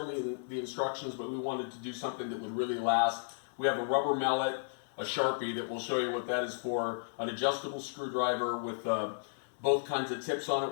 in the instructions, but we wanted to do something that would really last. We have a rubber mallet, a Sharpie that will show you what that is for, an adjustable screwdriver with both kinds of tips on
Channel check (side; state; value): right; silent; digital silence